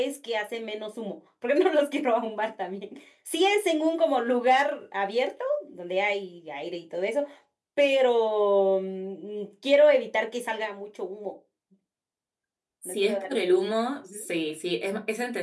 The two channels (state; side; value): identical; both; correlation 1.00